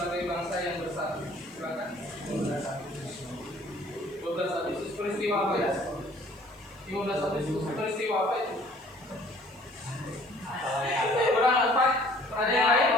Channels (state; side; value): noise; right; hiss, 28 dB below the sound